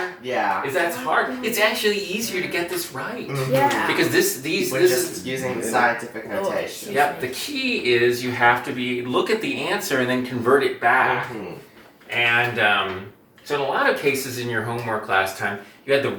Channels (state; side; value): identical; both; correlation 1.00